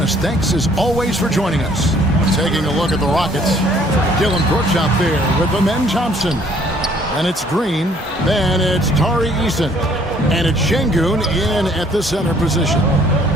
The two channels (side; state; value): both; normal; correlation 0.60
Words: us. Thanks as always for joining us. Taking a look at the Rockets. Dylan Brooks out there with Amen Thompson. And it's Green. Then it's Tari Eason. And it's Şengün in at the center position.